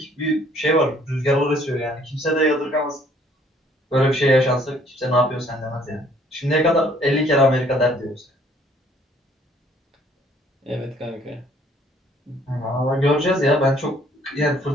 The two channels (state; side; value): normal; both; correlation 0.60